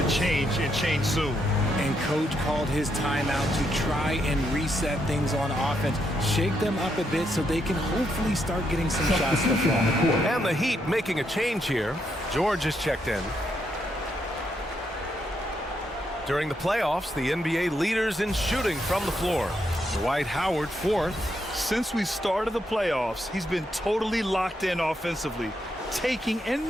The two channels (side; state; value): both; normal; correlation 0.78